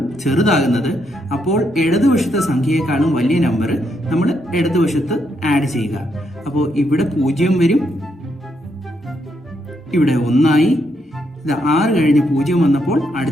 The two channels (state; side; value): normal; both; correlation 0.78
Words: ചെറുതാകുന്നത്, അപ്പോൾ ഇടതുവശത്തെ സംഖ്യയെക്കാളും വലിയ നമ്പർ നമ്മൾ ഇടതുവശത്ത് ആഡ് ചെയ്യുക. അപ്പോൾ ഇവിടെ 0 വരും, ഇവിടെ 1 ആയി. ഇത് 6 കഴിഞ്ഞ് 0 വന്നപ്പോൾ